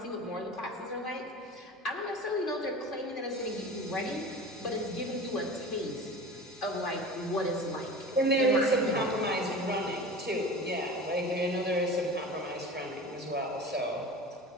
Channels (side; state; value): both; normal; correlation 0.35